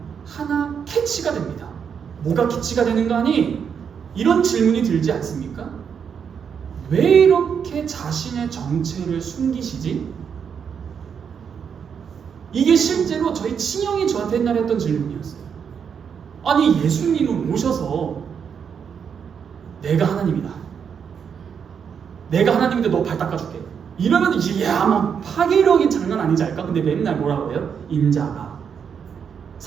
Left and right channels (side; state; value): left; quieter; 7.1 dB